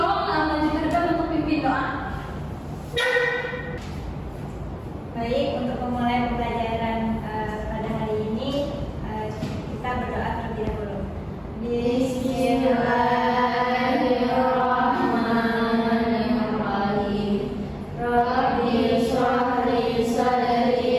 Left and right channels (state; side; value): identical; both; correlation 1.00